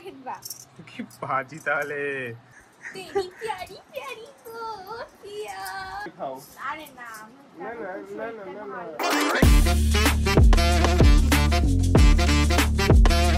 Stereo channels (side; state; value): both; identical; correlation 1.00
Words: বা কি বাজি তাহলে তেরি প্যারি প্যারি গো পিয়া। খাও। আরে না না না না না না না